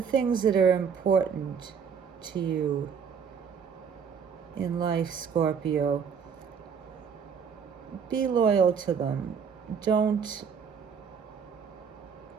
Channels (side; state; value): left; quieter; 6.8 dB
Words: that are important to you in life, Scorpio. Be loyal to them. Don't,